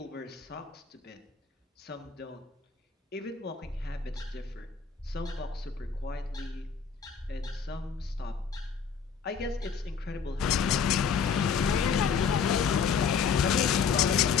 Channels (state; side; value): quieter; right; 6.4 dB